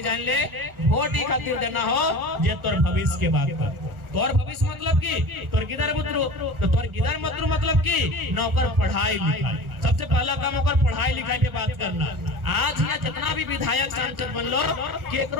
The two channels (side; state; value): left; late; 1.4 ms